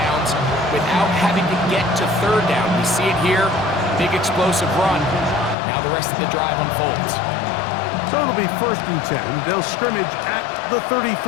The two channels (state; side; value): drops out; right; at 5.6 s